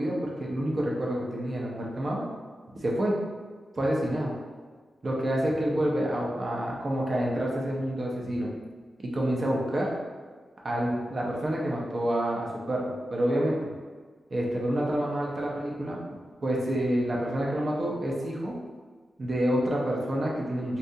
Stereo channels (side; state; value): both; normal; correlation 0.91